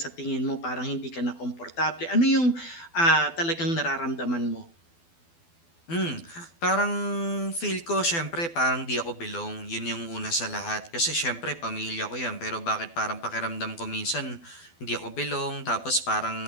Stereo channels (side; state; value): right; late; 12 ms